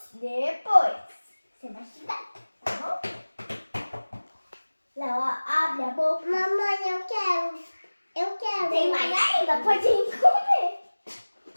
Você vai estudar, tá bom? Léo, abre a boca. Mamãe, eu quero. Tem mais ainda? Pode ir comer.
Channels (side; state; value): both; inverted; correlation -1.00